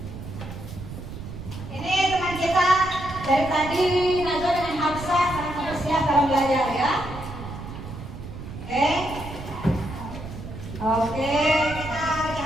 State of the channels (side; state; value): right; noise; rumble, 10 dB below the sound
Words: Ini teman kita dari tadi Najwa dengan Hafsah sangat bersiap dalam belajar ya. Oke. Oke, kita